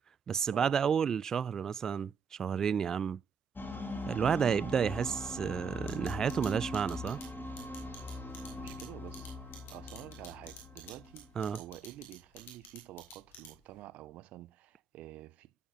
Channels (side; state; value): left; quieter; 5.8 dB